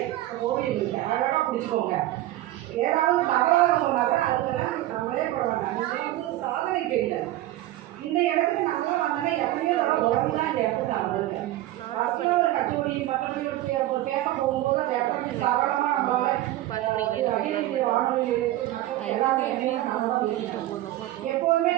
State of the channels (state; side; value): quieter; left; 15.5 dB